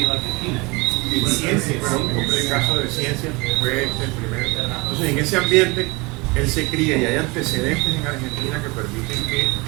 Argentina. En ciencias. Pero en el caso de ciencias fue el primero. Entonces, en ese ambiente, él se cría y hay antecedentes en Argentina que permiten que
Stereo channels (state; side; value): quieter; left; 26.0 dB